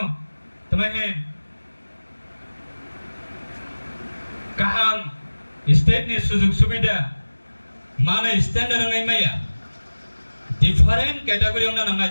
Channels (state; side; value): inverted; both; correlation -1.00